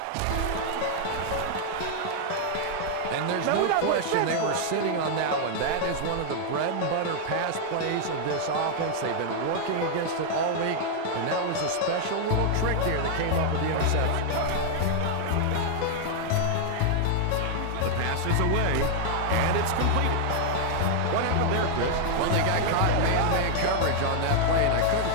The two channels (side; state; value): both; different; correlation 0.00